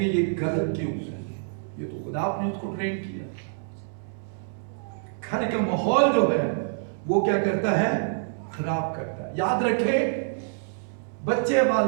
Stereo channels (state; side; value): silent; left; 60 dB below the other